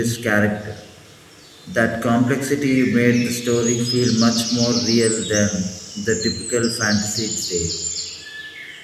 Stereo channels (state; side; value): identical; both; correlation 1.00